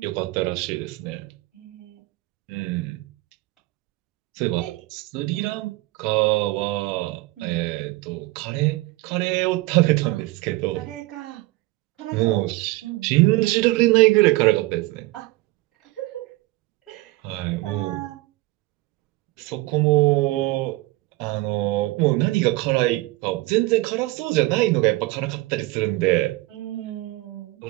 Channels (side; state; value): left; quieter; 20.1 dB